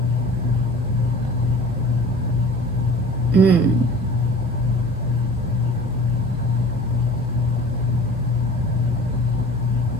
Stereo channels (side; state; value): both; normal; correlation 0.43